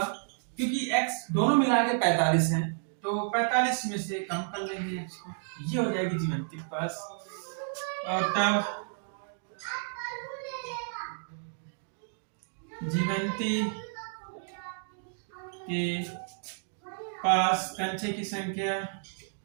क्योंकि x दोनों मिला के 45 हैं, तो 45 में से कम कर लेंगे x को, ये हो जाएगी जीवंती के पास। और तब जीवंती के पास कंचे की संख्या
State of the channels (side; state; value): left; silent; digital silence